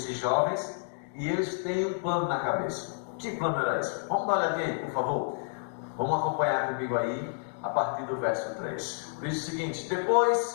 jovens, e eles têm um plano na cabeça. Que plano era esse? Vamos dar uma olhadinha aí, por favor. Vamos acompanhar comigo aí, a partir do verso 3. Diz o seguinte:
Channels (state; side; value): silent; right; digital silence